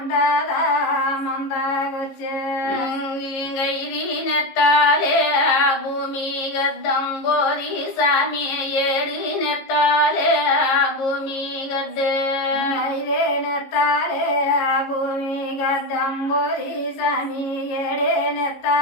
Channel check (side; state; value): right; late; 15 ms